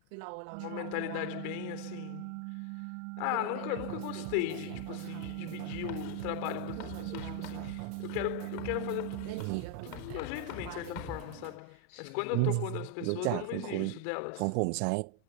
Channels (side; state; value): both; different; correlation 0.01